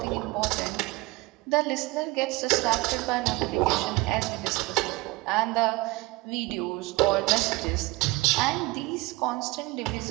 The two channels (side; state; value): left; quieter; 22.2 dB